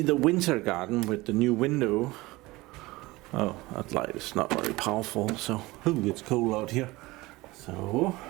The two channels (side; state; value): left; quieter; 20.8 dB